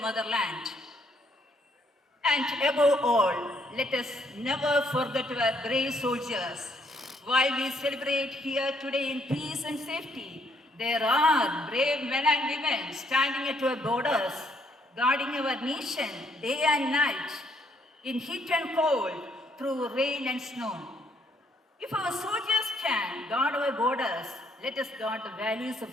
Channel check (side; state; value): both; normal; correlation 0.69